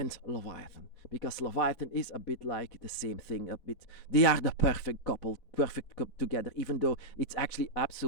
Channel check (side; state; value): right; late; 4.1 ms